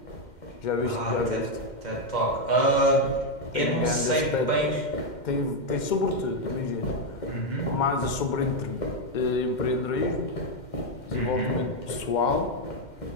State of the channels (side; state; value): right; late; 2.1 ms